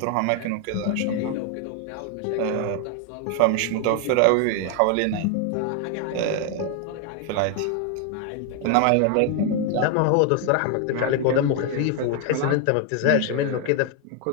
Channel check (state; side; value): different; both; correlation 0.01